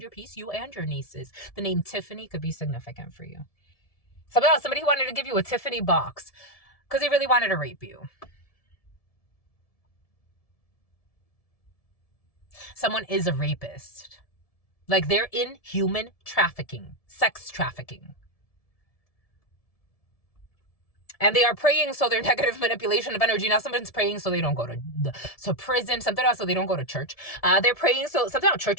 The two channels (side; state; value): right; late; 1.7 ms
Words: your peace, you and your nieces. The name Tiffany could be significant for you. Somebody who wanted to give you a Tiffany box because they really wanted to rape you. Someone is a rapist. Like they're in human trafficking, sex trafficking. And they are praying so their negative manipulation of energy. Now someone's praying so they don't go to prison. Something else so they don't go to church. They're praying so something else.